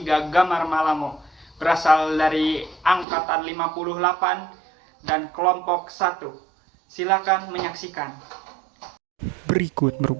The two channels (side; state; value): left; drops out; at 3.1 s